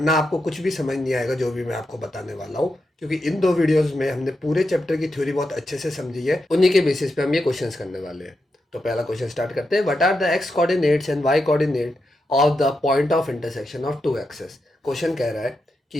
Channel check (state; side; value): normal; both; correlation 0.86